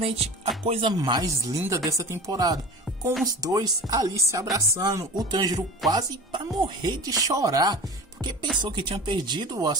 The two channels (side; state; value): both; normal; correlation 0.34